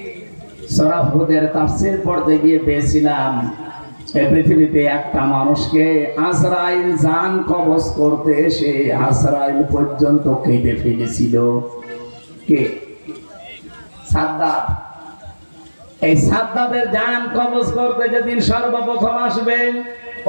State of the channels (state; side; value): inverted; both; correlation -1.00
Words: সূরা হুদের তাফসীর পড়তে গিয়ে পেয়েছিলাম এই পৃথিবীতে একটা মানুষকে আজরাইল জান কবজ করতে এসে আজরাইল পর্যন্ত কেটে ফেলেছিল। কে? সাদ্দাত। এই সাদ্দাতের জান কবজ করতে যেদিন সর্বপ্রথম আসবে,